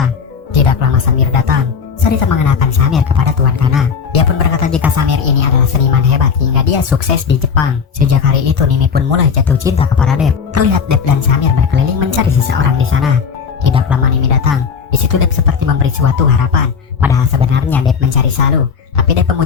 Tidak lama Samir datang. Sarita mengenalkan Samir kepada Tuan Kana. Dia pun berkata jika Samir ini adalah seniman hebat hingga dia sukses di Jepang. Sejak hari itu Nimi pun mulai jatuh cinta kepada Dev. Terlihat Dev dan Samir berkeliling mencari seseorang di sana. Tidak lama Nimi datang. Di situ Dev seperti memberi suatu harapan. Padahal sebenarnya Dev mencari Salu. Tapi Dev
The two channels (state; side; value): quieter; right; 6.2 dB